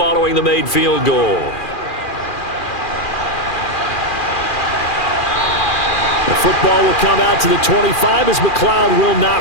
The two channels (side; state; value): right; late; 2.4 ms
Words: the made field goal. Football will come out to the 25 as McLeod will